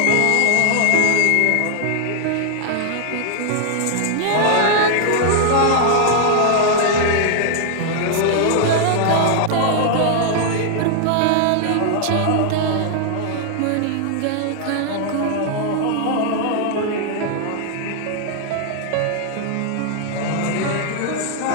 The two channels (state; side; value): different; both; correlation 0.00